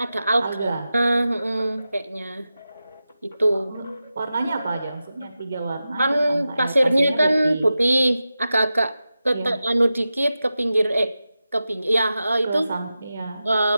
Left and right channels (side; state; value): both; inverted; correlation -0.93